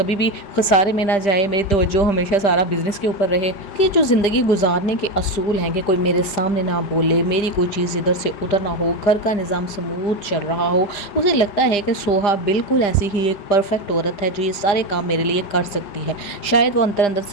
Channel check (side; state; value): right; late; 5.0 ms